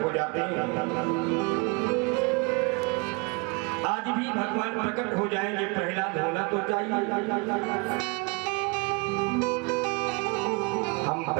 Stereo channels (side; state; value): left; quieter; 29.7 dB